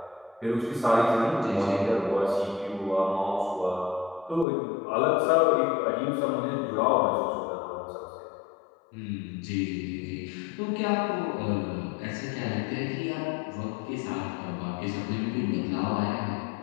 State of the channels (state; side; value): drops out; right; at 4.5 s